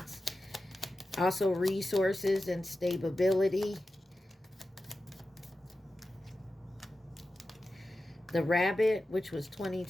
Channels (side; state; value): both; normal; correlation 0.93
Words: Also resources and stability. The rabbit, which was